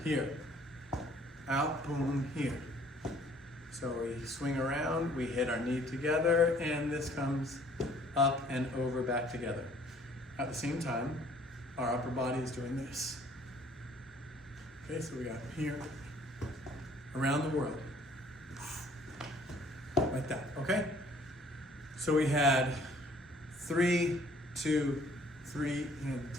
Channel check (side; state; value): both; normal; correlation 0.58